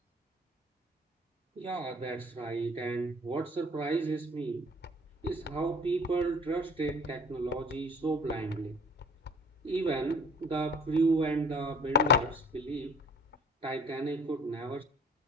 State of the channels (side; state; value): both; normal; correlation 0.49